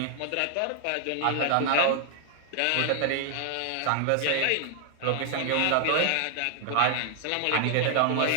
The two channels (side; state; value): both; different; correlation 0.00